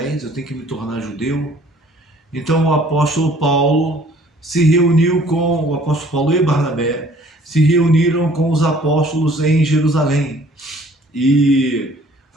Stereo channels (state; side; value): normal; both; correlation 0.56